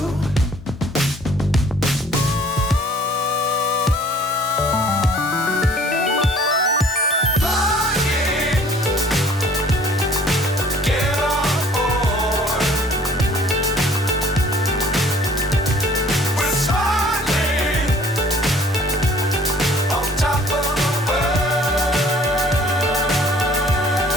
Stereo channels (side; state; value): both; normal; correlation 0.54